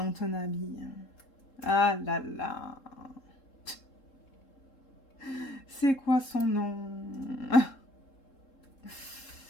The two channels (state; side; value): late; right; 3.7 ms